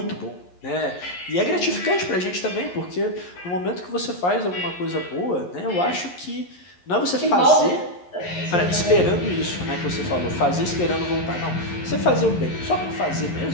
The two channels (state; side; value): late; right; 11 ms